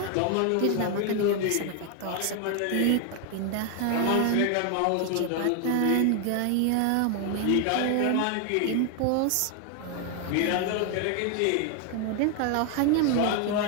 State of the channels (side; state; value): both; different; correlation 0.00